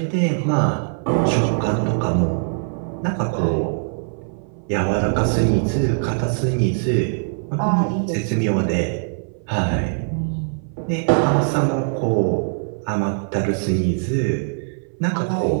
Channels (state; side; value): silent; left; 59 dB below the other